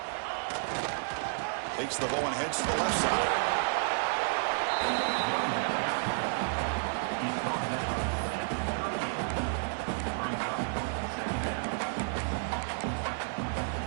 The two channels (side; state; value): left; silent; digital silence